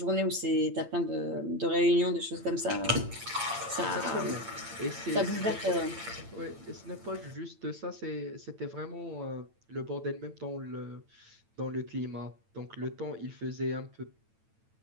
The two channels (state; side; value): late; left; 8.9 ms